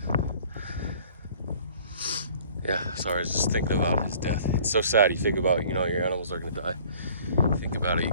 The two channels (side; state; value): both; inverted; correlation -0.53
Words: Yeah, sorry, I was just thinking about his death. It's so sad. You think about, your animals are gonna die. You think about it, you